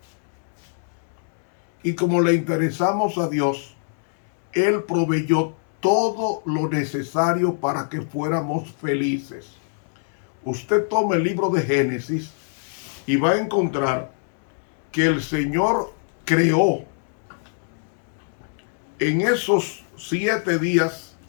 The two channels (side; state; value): right; silent; digital silence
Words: Y como le interesamos a Dios, Él proveyó todo lo necesario para que fuéramos felices. Usted toma el libro de Génesis y va a encontrar que el Señor creó en esos 7 días,